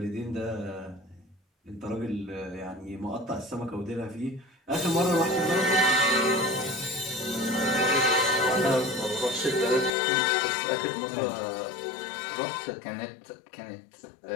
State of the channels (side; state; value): right; drops out; at 9.9 s